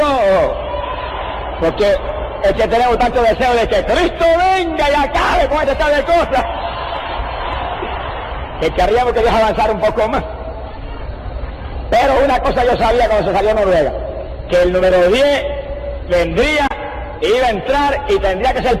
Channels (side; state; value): both; identical; correlation 1.00